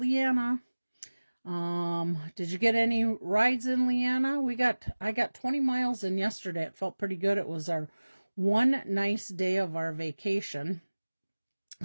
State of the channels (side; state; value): both; inverted; correlation -1.00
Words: Did you get any rides in, Leanna? I got 20 miles in yesterday. It felt pretty good. It was our one nice day of our vacation.